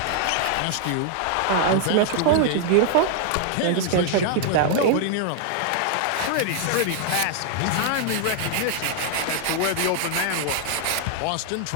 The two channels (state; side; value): different; both; correlation 0.00